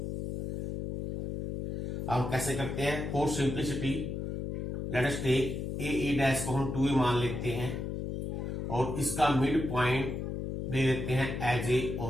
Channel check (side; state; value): left; noise; hum, 4 dB below the sound